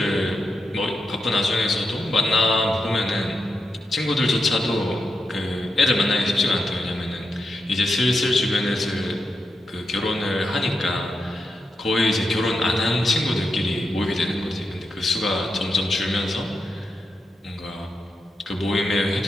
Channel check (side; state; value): both; normal; correlation 0.87